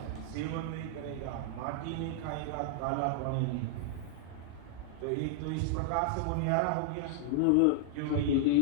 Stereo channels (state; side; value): different; both; correlation -0.01